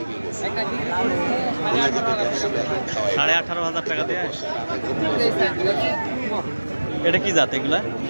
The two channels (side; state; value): both; inverted; correlation -1.00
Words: 18,500 টাকা দিয়ে। এটা কি জাত এগুলা?